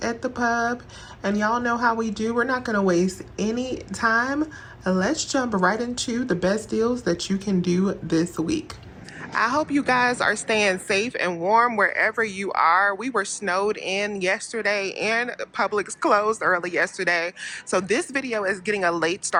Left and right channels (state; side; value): identical; both; correlation 1.00